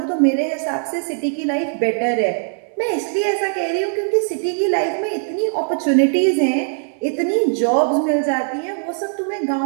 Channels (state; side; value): silent; left; digital silence